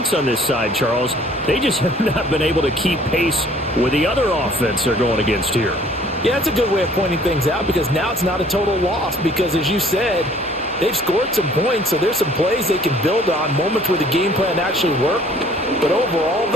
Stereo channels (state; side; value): normal; both; correlation 0.56